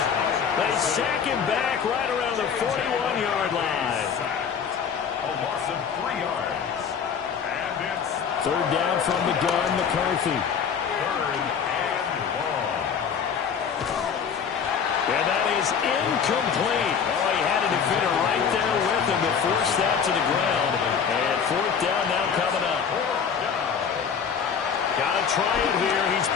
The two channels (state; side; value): quieter; right; 7.0 dB